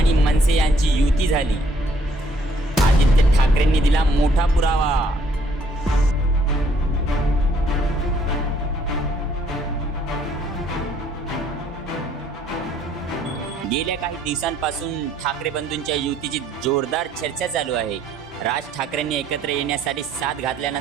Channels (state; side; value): normal; both; correlation 0.65